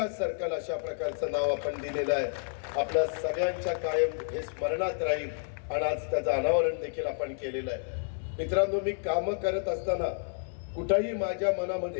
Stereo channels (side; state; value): right; silent; 58 dB below the other